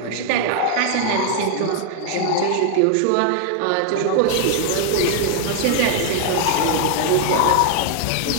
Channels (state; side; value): different; both; correlation 0.00